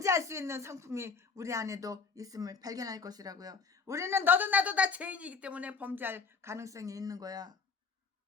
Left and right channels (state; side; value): quieter; right; 5.0 dB